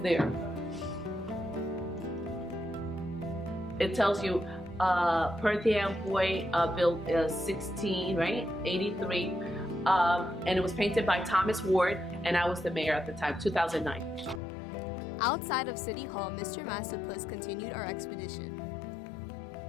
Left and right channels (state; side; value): drops out; right; at 14.4 s